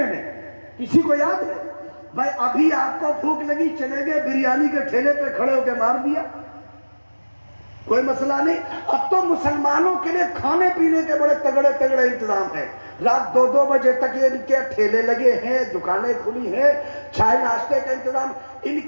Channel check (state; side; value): inverted; both; correlation -1.00